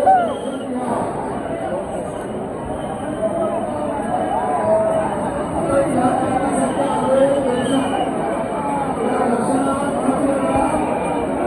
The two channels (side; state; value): both; identical; correlation 1.00